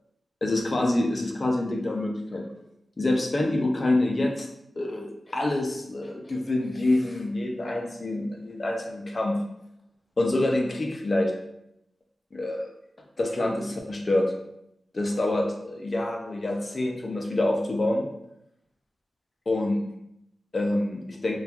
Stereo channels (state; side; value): normal; both; correlation 0.96